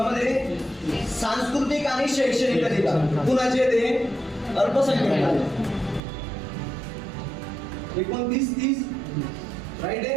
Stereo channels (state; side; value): drops out; left; at 6.0 s